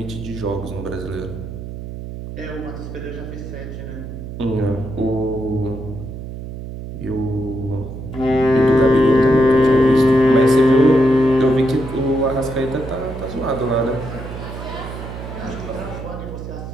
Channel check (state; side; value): noise; right; hum, 9 dB below the sound